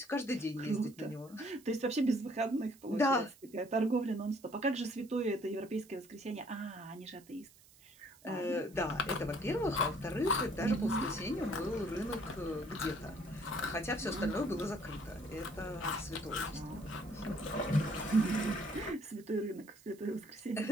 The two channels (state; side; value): noise; right; hiss, 25 dB below the sound